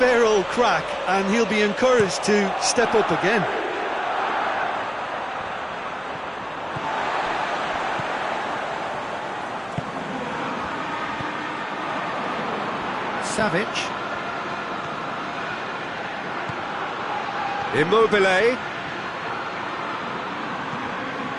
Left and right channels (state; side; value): identical; both; correlation 1.00